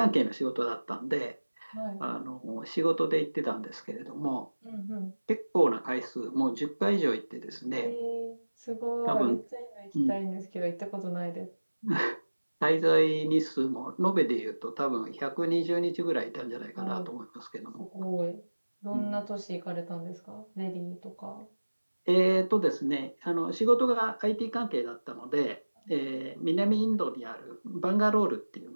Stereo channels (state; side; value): inverted; both; correlation -1.00